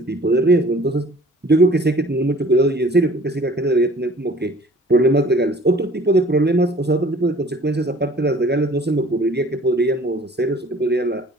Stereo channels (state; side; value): normal; both; correlation 0.51